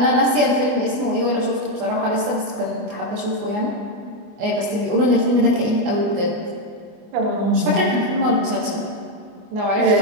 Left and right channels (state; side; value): late; left; 24 ms